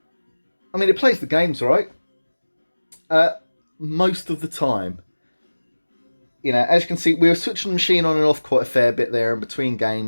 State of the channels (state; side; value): inverted; both; correlation -1.00